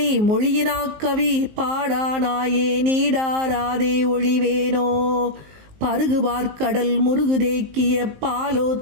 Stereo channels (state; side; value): late; left; 19 ms